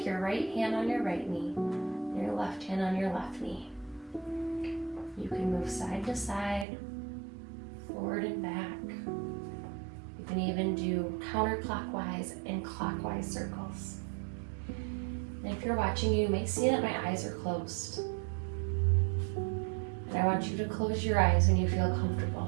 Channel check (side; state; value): left; drops out; at 6.7 s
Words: your right hand on your right knee and your left hand on your left knee. You can move side to side, forward and back. You can even do counterclockwise and clockwise circles. And if you're watching, you may see that my eyes are closed. And I want you to close your eyes when you feel